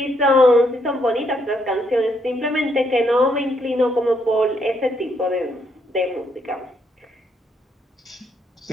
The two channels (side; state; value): both; normal; correlation 0.74